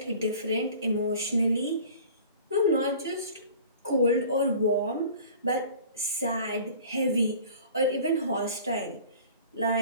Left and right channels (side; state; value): both; inverted; correlation -0.45